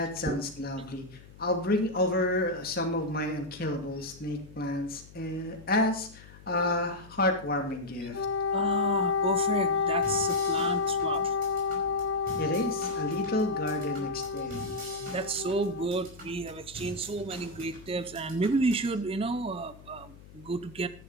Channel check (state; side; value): noise; left; hum, 20 dB below the sound